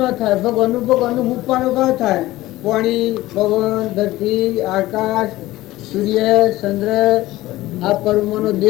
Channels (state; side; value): quieter; right; 17.1 dB